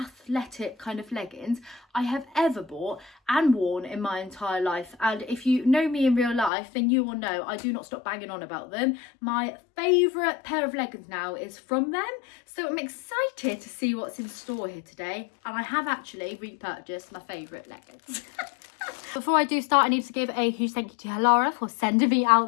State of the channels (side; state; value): right; drops out; at 6.5 s